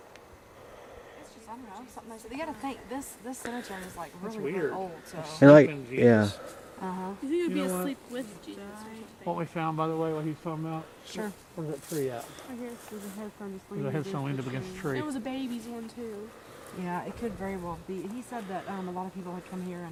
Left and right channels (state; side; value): identical; both; correlation 1.00